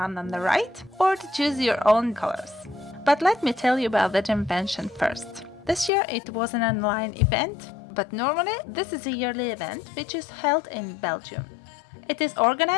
on the right, or to choose your own colors. But let me tell you about the Jamvention first. This year it was an online event, but normally this is a yearly event which is held in Belgium. It is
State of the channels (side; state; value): right; drops out; at 5.9 s